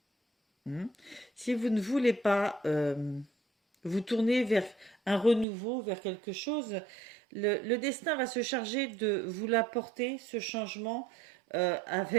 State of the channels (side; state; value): left; drops out; at 5.5 s